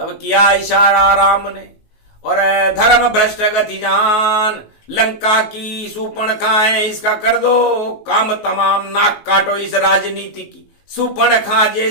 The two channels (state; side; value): late; right; 19 ms